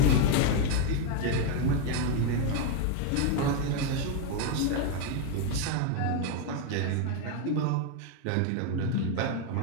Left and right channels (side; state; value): both; different; correlation 0.01